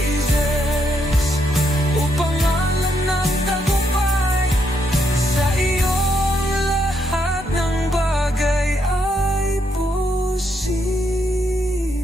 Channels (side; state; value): both; normal; correlation 0.77